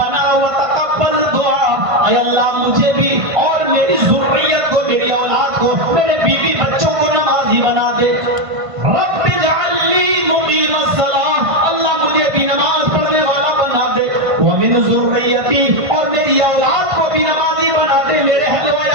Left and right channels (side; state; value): left; late; 1.5 ms